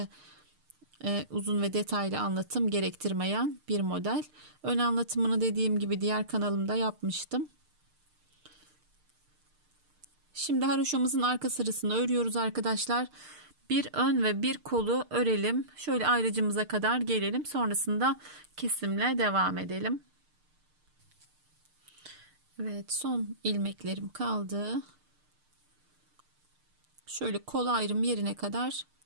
uzun ve detaylı anlatım gerektirmeyen bir model. Ön anlatımını dediğim gibi diğer kanalımda yapmıştım. Şimdi haroşamızın arka sırasını örüyoruz arkadaşlar. Bir ön ve bir kolu örelim. Şöyle ayrıcımıza kadar gelelim. Sonrasında kesimle devam edelim. Evet, son ilmeklerim kaldı. Şöyle kol ayrım yerine kadar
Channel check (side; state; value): left; late; 6.6 ms